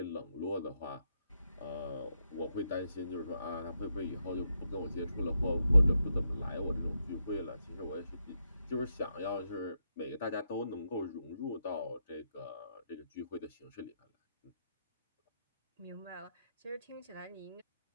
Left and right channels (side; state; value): both; inverted; correlation -0.82